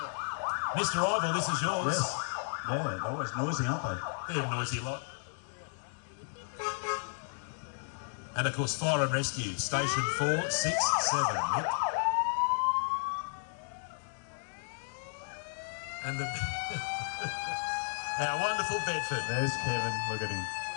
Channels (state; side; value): silent; right; 56 dB below the other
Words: Mr. Ivel, this is yours. Yes. Yeah, they're always noisy, aren't they? They're a noisy lot. And of course, Fire and Rescue, Station 4, 6, 7. Nick. And the... our wonderful Bedford. There's Kevin, look at him.